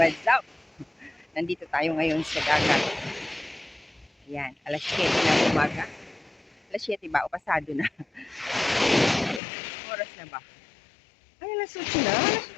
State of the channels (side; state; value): right; drops out; at 9.4 s